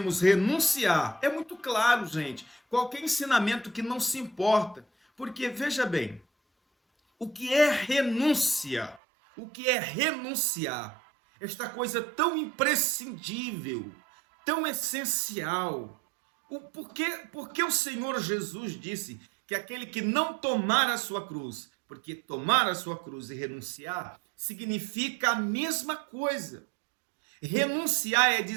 renunciar, é muito claro, gente, qualquer ensinamento que não se importa, porque veja bem, o que é renúncia? O que é renunciar? Esta coisa tão imprescindível, tão essencial. Por que o Senhor Jesus disse que aquele que não tomar a sua cruz, porque tomar a sua cruz e renunciar significa a mesma coisa. Renunciar é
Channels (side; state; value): left; drops out; at 9.0 s